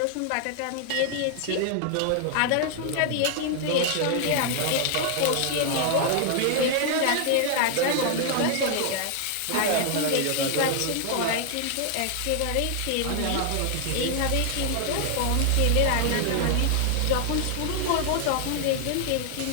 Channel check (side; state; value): both; different; correlation 0.00